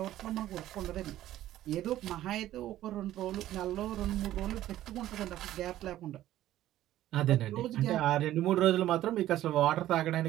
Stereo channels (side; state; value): left; quieter; 13.7 dB